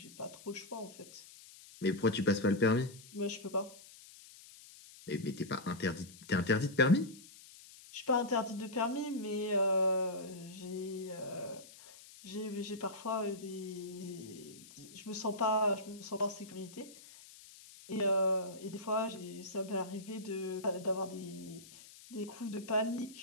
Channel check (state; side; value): noise; left; hiss, 19 dB below the sound